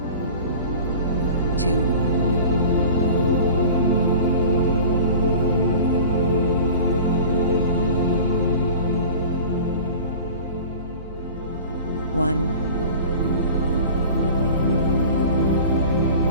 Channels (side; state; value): both; inverted; correlation -0.39